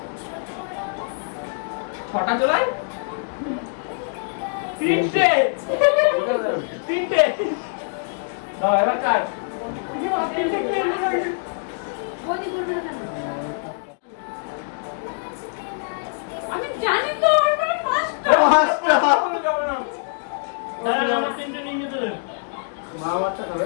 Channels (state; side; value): silent; right; digital silence